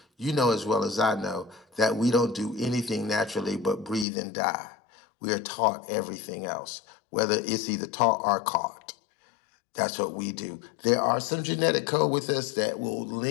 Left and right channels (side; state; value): right; drops out; at 4.0 s